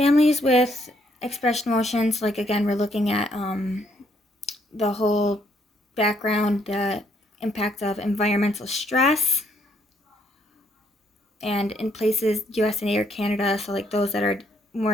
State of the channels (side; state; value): both; normal; correlation 0.70